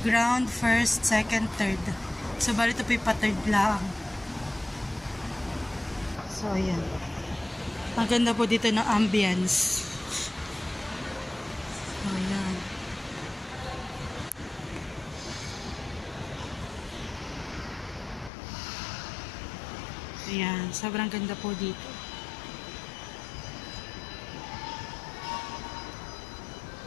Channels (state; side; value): drops out; right; at 18.3 s